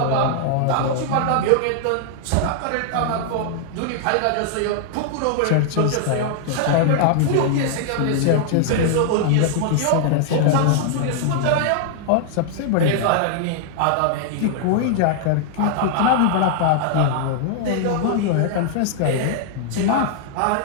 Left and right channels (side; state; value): both; different; correlation -0.01